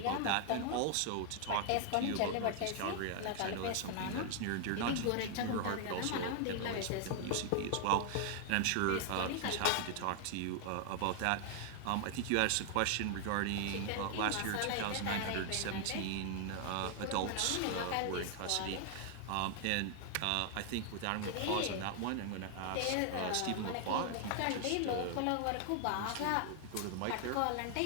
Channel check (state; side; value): different; both; correlation 0.00